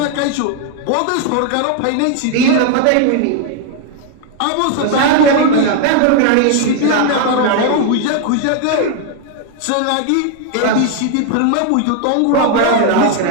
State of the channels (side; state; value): both; different; correlation 0.00